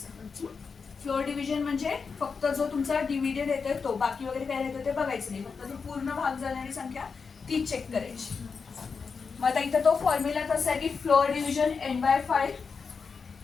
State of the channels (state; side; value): quieter; right; 5.3 dB